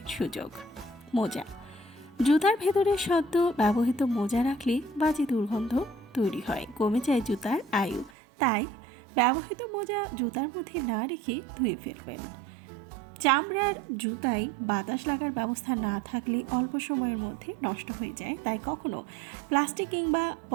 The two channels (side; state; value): left; drops out; at 8.1 s